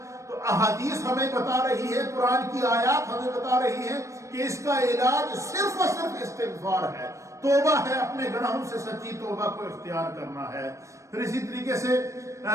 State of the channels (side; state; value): left; late; 0.15 ms